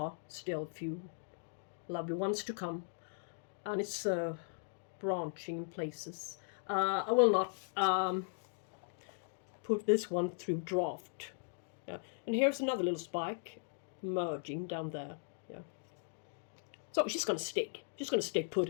still a few lovely ones to come. And it's branching in places. I will not put this one through draft. Yeah. And here's another little spike merging down there. Yeah. So she's gonna stick. She's gonna stay put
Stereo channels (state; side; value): silent; right; digital silence